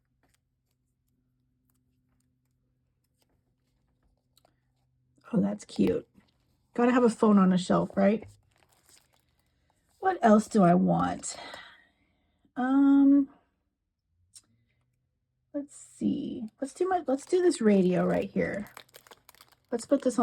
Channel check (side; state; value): both; identical; correlation 1.00